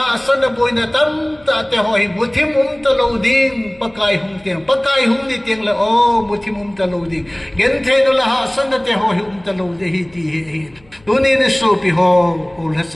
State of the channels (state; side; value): noise; left; hum, 29 dB below the sound